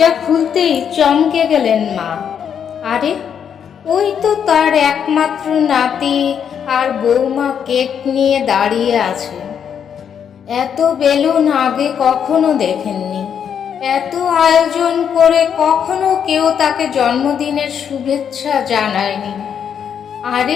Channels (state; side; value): quieter; right; 8.0 dB